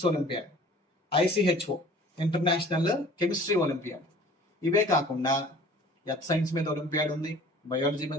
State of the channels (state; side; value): normal; both; correlation 0.48